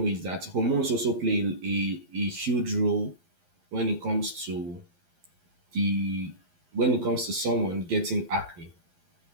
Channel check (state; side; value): late; left; 11 ms